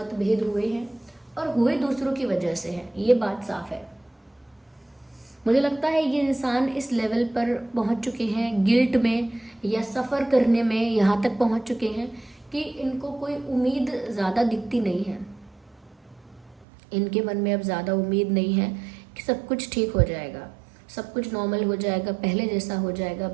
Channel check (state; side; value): drops out; left; at 16.7 s